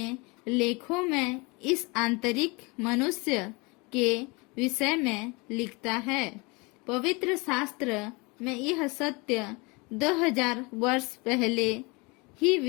लेखों में इस आंतरिक मनुष्य के विषय में लिखता है। पवित्र शास्त्र में यह सत्य 2000 वर्ष पहले ही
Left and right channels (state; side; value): quieter; right; 27.3 dB